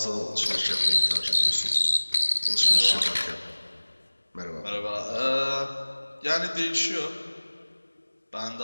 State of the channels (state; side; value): inverted; both; correlation -1.00